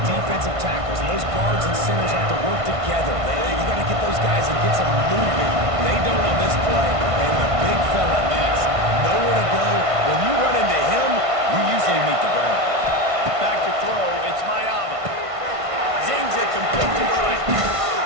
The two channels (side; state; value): left; late; 1.5 ms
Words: defensive tackles, and those guards and centers have to work together. You got to get those guys and get some movement. They don't on this play, and the big fella is nowhere to go. When you run into him, you usually meet the ground. Back to throw, it's Mayava. Zings it complete to the right.